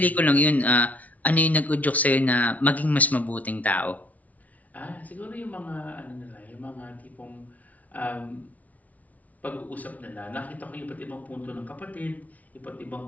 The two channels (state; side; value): late; right; 0.072 ms